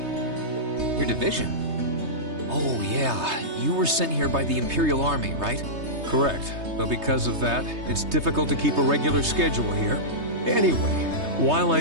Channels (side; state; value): left; late; 3.2 ms